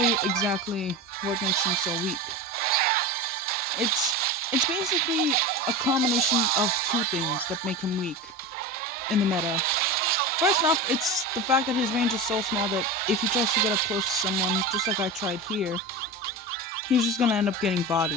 you exactly what makes him so weak. It's basically a combination of two things that make him weak in the meta. First off, it's the fact that his range is so small that if he tries to get up close to someone, just like I tried here, he's just gonna end up getting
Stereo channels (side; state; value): both; normal; correlation 0.25